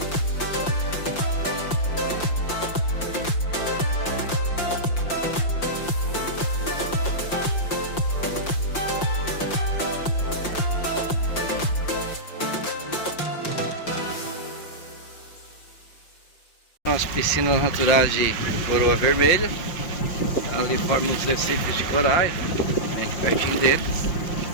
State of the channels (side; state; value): right; late; 5.7 ms